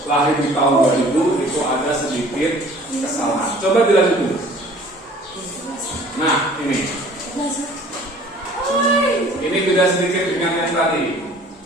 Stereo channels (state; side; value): normal; both; correlation 0.51